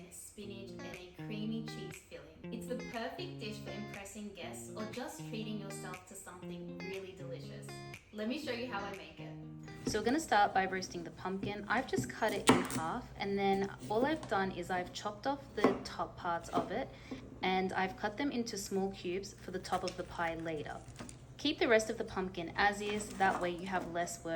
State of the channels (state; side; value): identical; both; correlation 1.00